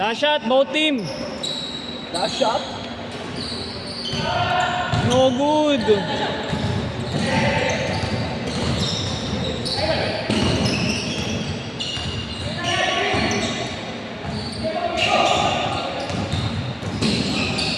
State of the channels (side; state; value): both; identical; correlation 1.00